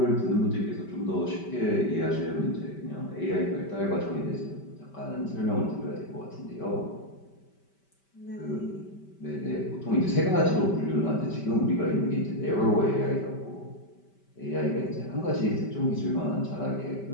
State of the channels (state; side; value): late; right; 5.1 ms